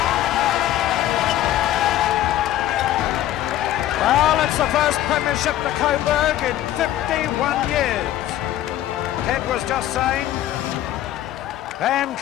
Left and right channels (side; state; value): right; quieter; 13.3 dB